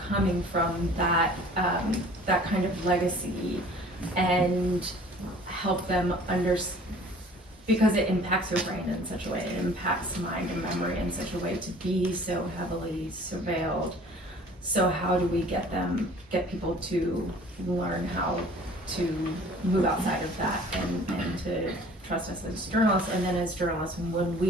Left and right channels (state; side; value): normal; both; correlation 0.49